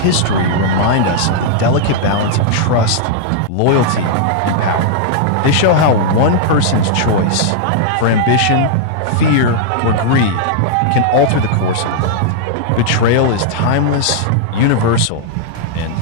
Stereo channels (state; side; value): different; both; correlation -0.01